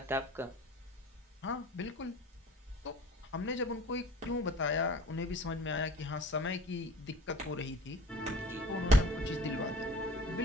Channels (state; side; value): normal; both; correlation 0.44